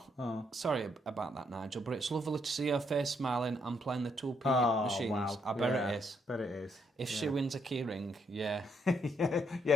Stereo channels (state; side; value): normal; both; correlation 0.74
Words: sorry about that, Nigel, but it's lovely to see her face smiling and playing the 2p machines. Wow. I bet it is. Bet it is. If she wins a keyring, yeah.